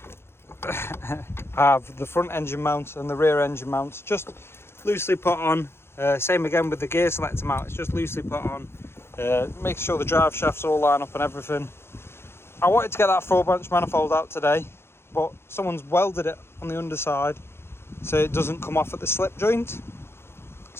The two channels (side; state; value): right; late; 0.12 ms